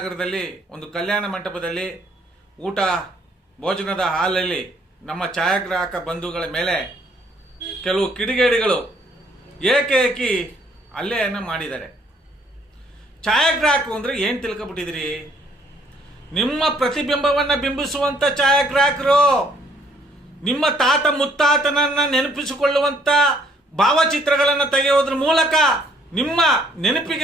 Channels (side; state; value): both; normal; correlation 0.64